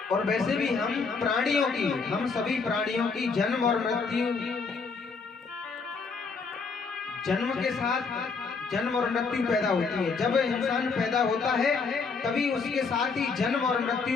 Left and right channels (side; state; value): right; quieter; 4.8 dB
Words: और वैसे भी हम सभी प्राणियों की जन्म और मृत्यु, जन्म के साथ जन्म और मृत्यु पैदा होती है। जब इंसान पैदा होता है तभी उसके साथ ही जन्म और